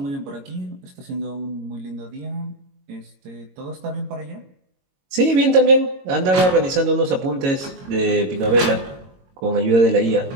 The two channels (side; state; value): left; late; 22 ms